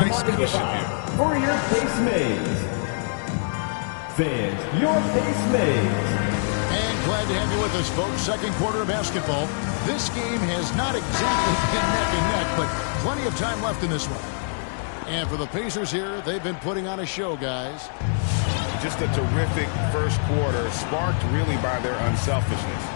cushion here. For your face mates. Fans, your face mates. And glad to have you with us, folks. Second quarter of basketball. This game has not exactly been neck and neck, but plenty of time left in this one. And for the Pacers here, they've been putting on a show, guys. Just a terrific first quarter, sparked really by their unselfishness.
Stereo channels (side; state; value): right; silent; digital silence